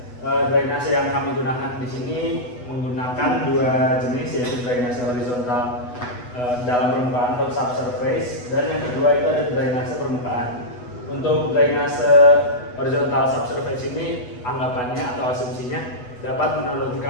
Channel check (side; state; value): right; late; 8.1 ms